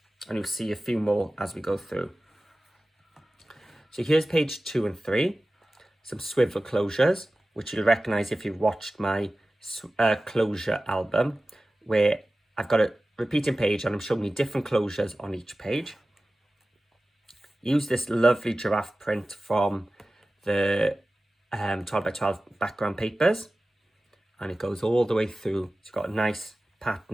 And you'll see a few more as we go through. So here's page 2 and 3. Some swivel closures, which you'll recognize if you've watched my closure album, where I've got a repeating page and I'm showing you different closures on each page. Use this lovely giraffe print from the 12 by 12 background papers, and it goes all the way through. It's got a nice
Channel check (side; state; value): both; normal; correlation 0.96